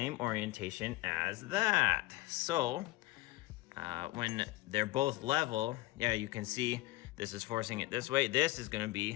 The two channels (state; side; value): quieter; right; 19.3 dB